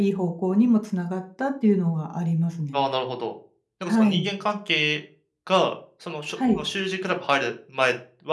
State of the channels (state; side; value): identical; both; correlation 1.00